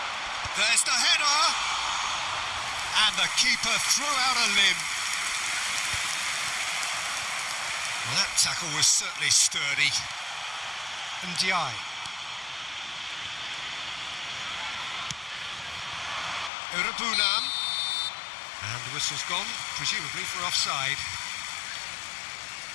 There's the header, and the keeper threw out a limb. Well, that tackle was certainly sturdy. Ndiaye. Urabunam. And the whistle's gone, presumably for offside.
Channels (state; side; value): drops out; right; at 16.5 s